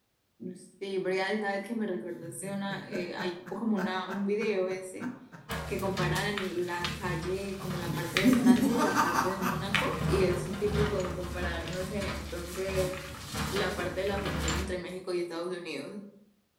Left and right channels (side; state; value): both; identical; correlation 1.00